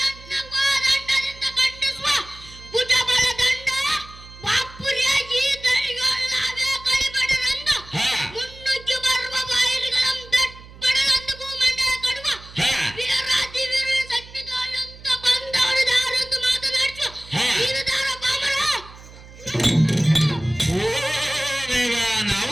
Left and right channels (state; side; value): noise; right; hum, 19 dB below the sound